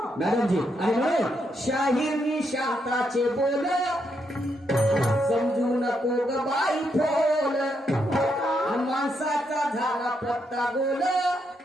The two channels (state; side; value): normal; both; correlation 0.79